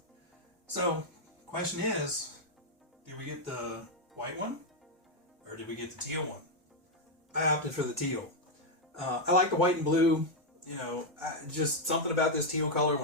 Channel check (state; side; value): normal; both; correlation 0.01